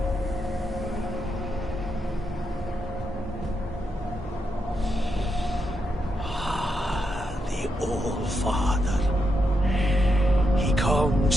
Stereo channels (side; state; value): both; normal; correlation 0.83